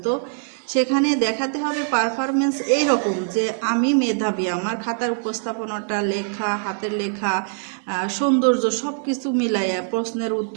তো সেখানে দেখাতে হবে পারফরমেন্স এইরকম যে আমি মেধাবী, আমার খাতার উপস্থাপনাটা, লেখা, হাতের লেখা, সৌন্দর্য সব কিছু মিলাইয়া প্রশ্নের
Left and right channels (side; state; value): left; silent; digital silence